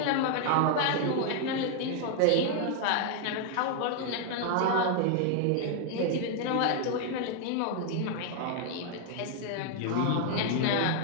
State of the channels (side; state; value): both; different; correlation 0.00